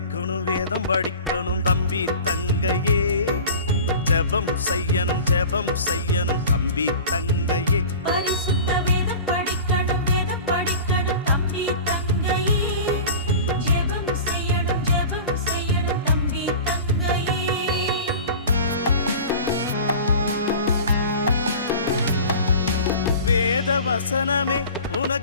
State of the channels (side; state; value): both; inverted; correlation -0.37